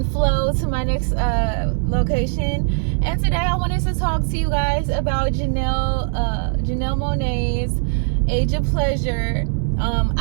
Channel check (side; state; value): left; silent; digital silence